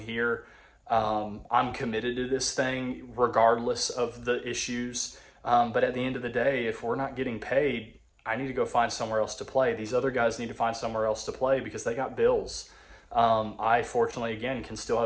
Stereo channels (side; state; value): both; identical; correlation 1.00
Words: here. I'm committed to this thing regardless of the issues. But at the end of the day, if we're not getting paid, I need to go find somewhere else to play. These other guys need to find somewhere else to play because they got bills. I fortunately, again, can still